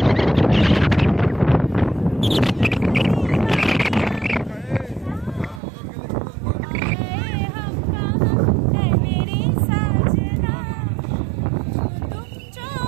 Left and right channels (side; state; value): left; drops out; at 5.6 s